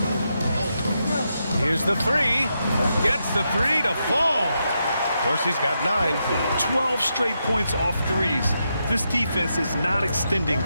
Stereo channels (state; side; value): inverted; both; correlation -0.84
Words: Here's the 3. Gets the 3 to fall. Dorsey's got 9. 12 straight points off threes. This defense is not extending